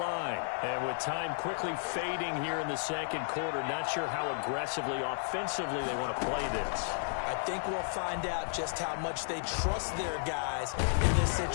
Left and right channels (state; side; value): silent; right; 56 dB below the other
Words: And with time quickly fading here in the second quarter, not sure how aggressively, offensively they want to play this. I think we'll find out just how much they trust their guys in this